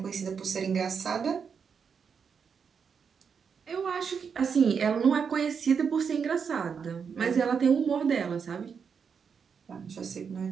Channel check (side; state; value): left; quieter; 6.4 dB